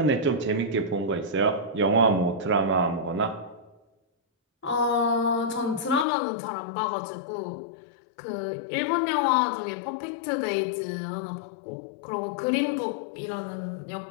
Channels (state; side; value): drops out; right; at 6.1 s